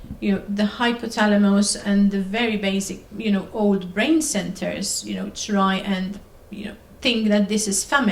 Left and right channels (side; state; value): both; identical; correlation 1.00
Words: the hypothalamus and the very basic, old brain centers, try and, think that this is